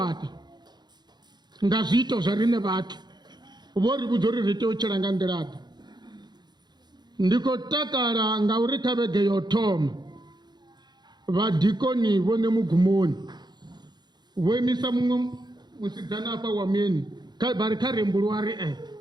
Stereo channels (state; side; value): late; left; 0.21 ms